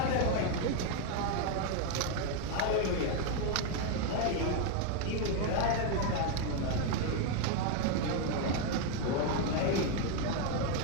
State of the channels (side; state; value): both; different; correlation 0.01